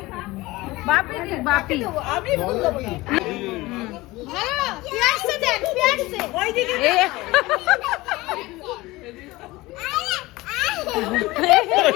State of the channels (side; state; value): right; quieter; 20.1 dB